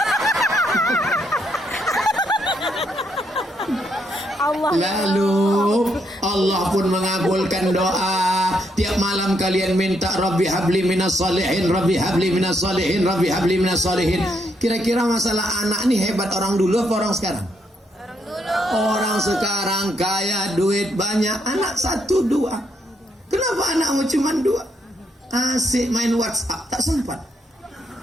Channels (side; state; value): both; normal; correlation 0.76